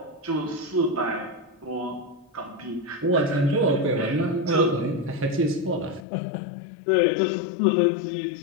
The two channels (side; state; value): right; drops out; at 6.1 s